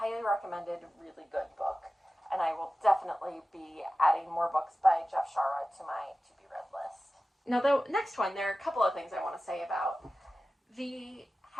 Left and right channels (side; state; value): both; normal; correlation 0.95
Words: recommended, really good book. And I will definitely be adding more books by Jeff Shaara to my to-be-read list. Now, the next one, there are a couple of things I want to say about.